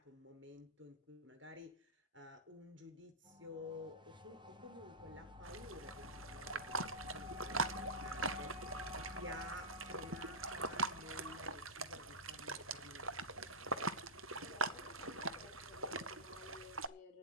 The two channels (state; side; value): normal; both; correlation -0.16